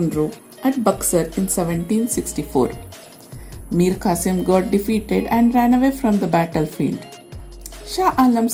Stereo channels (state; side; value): identical; both; correlation 1.00